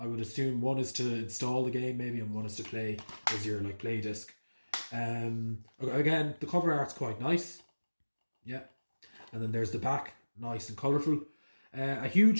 would assume one is to install the game maybe, and one is to play as your like play disc. Again, the cover art's quite nice. Yeah. And then there's the back, nice and colourful. A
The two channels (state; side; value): inverted; both; correlation -1.00